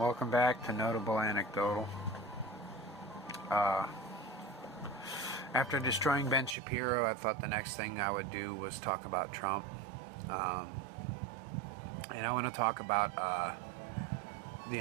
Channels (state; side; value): drops out; left; at 6.6 s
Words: back to Notable Anecdotal. After destroying Ben Shapiro, I thought the next thing I would do was talk about Trump. And I want to talk about the